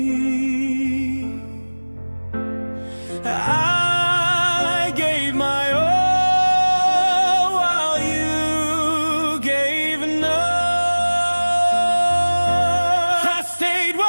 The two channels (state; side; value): inverted; both; correlation -1.00